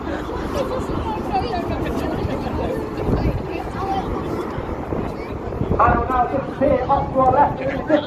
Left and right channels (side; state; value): both; identical; correlation 1.00